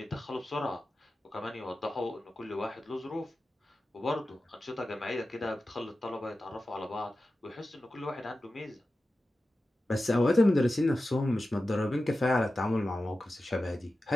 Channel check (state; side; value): normal; both; correlation 0.93